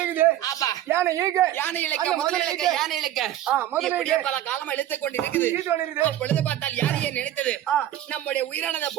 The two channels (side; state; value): left; quieter; 12.5 dB